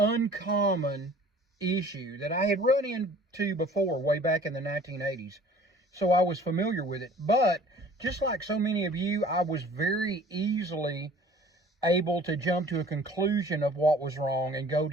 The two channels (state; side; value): normal; both; correlation 0.49